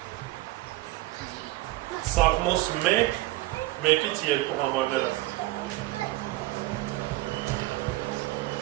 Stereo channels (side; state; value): left; quieter; 18.1 dB